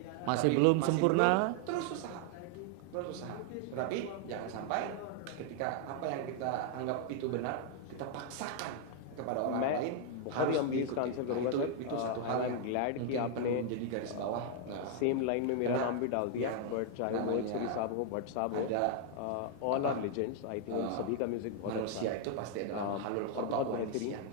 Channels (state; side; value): different; both; correlation 0.00